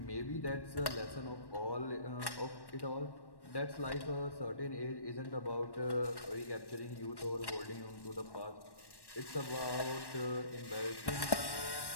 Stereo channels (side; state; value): right; late; 1.1 ms